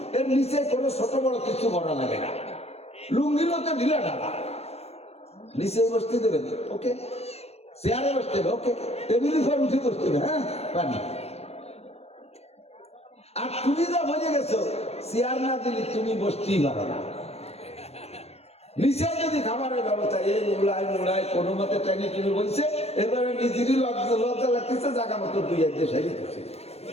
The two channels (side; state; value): right; late; 0.30 ms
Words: এর নিচে কোনো ছোট বড় কিছু ভরা লাগে না, লুঙ্গিরও তো ঢিলা ঢালা, নিচে বসতে দেবেন, ওকে, চেয়ারে বসতে হবে, ওকে, টেবিলের উপর উঠে বসতে হবে, হ্যাঁ পানি। আর তুমি যা বুঝে গেছো, চেয়ার না দিলে তুমি বসতেই পারো না। নিচে যদি খাবারের ব্যবস্থা, এই মুড়ায় কোনো মতে ট্রেনে কিনে বলছে, এবারে নিজেরই লজ্জা লাগতেছে, জায়গা মতো দুই এক দেশ হারিয়েছে।